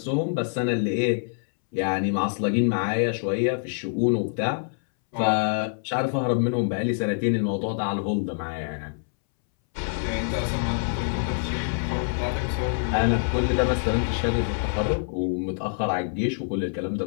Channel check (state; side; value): silent; right; 61 dB below the other